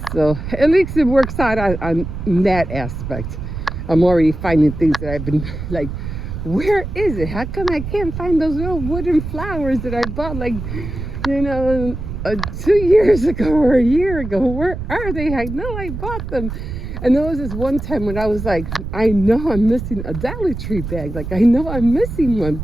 So at least it works out on that aspect. I'm already finding things that I've been like, where is it? How come I can't find those little wooden flowers that I bought like, 2 years ago or a year ago? Where are they? I know I bought them. And there was this one time when I was like, I know I'm missing a Dollar Tree bag. Like, I know I'm missing one.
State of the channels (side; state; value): right; noise; rumble, 7 dB below the sound